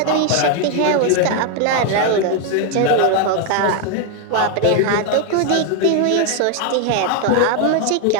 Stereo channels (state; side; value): different; both; correlation 0.01